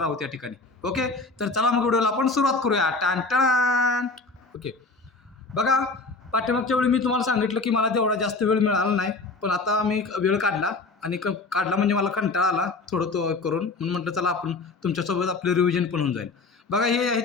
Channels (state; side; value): quieter; right; 3.7 dB